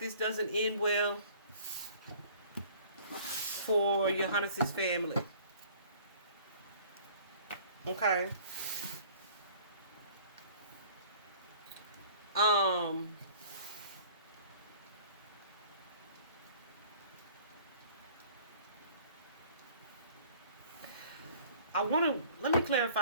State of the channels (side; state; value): both; inverted; correlation -0.51